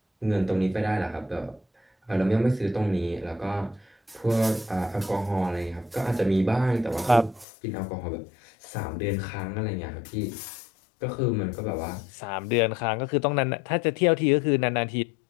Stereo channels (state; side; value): drops out; right; at 7.5 s